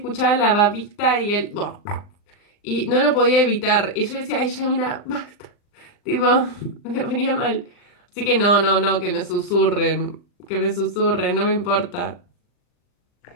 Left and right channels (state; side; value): late; right; 39 ms